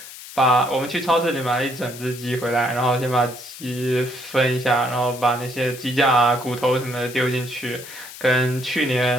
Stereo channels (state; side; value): noise; left; hiss, 14 dB below the sound